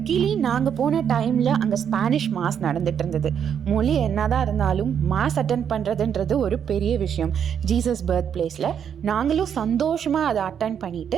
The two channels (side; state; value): left; quieter; 8.2 dB